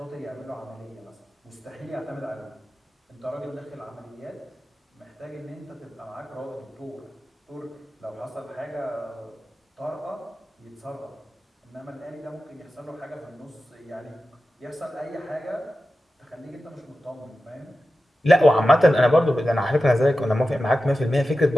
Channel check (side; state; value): both; normal; correlation 0.93